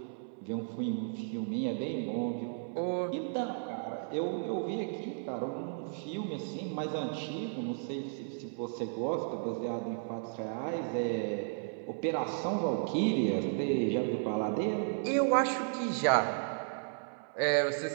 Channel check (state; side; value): silent; left; 55 dB below the other